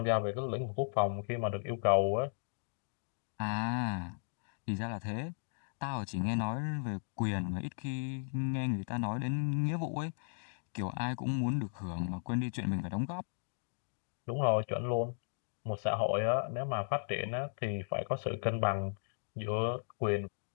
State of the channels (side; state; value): right; silent; digital silence